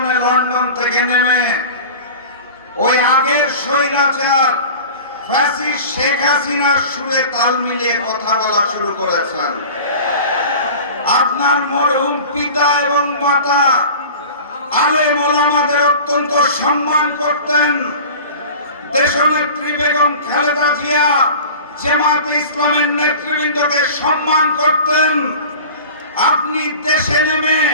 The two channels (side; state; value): both; inverted; correlation -0.38